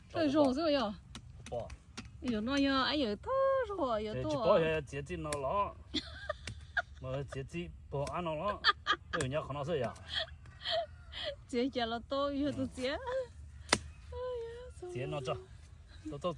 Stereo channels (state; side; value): identical; both; correlation 1.00